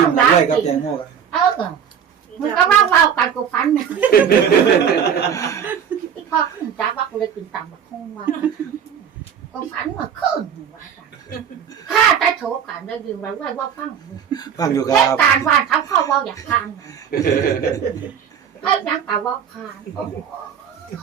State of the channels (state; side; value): quieter; left; 8.0 dB